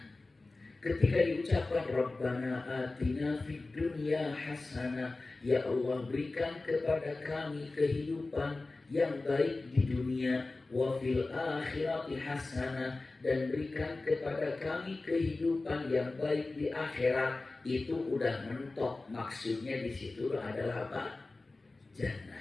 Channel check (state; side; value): quieter; right; 3.3 dB